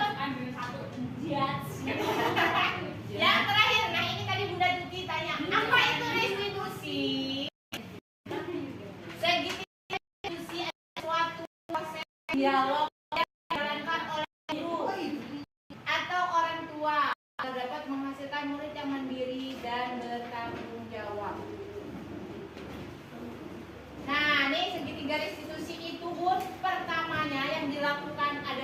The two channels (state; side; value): identical; both; correlation 1.00